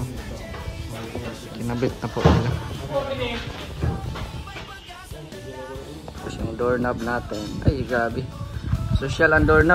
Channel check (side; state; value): both; identical; correlation 1.00